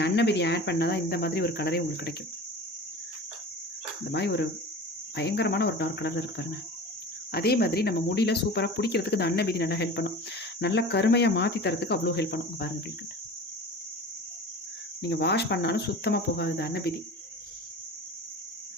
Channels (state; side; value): normal; both; correlation 0.36